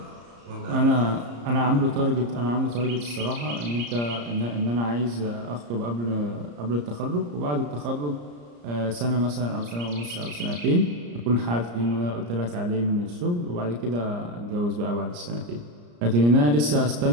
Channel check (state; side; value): late; left; 34 ms